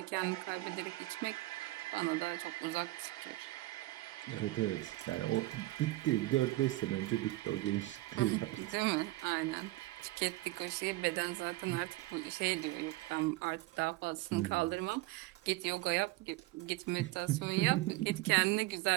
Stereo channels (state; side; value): quieter; left; 18.9 dB